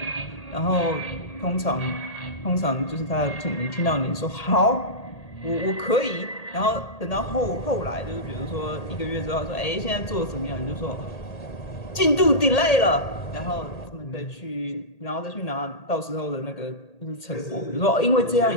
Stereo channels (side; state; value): right; late; 1.8 ms